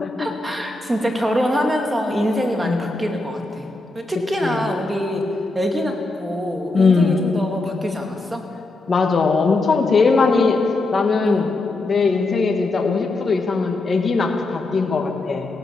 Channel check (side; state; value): right; quieter; 3.0 dB